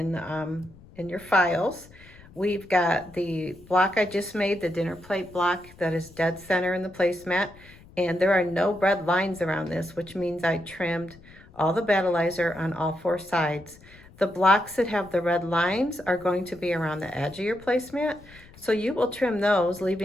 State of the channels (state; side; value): noise; left; rumble, 23 dB below the sound